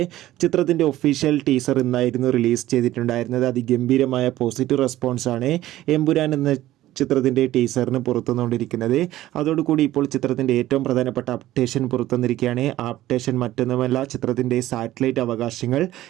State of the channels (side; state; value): left; quieter; 14.9 dB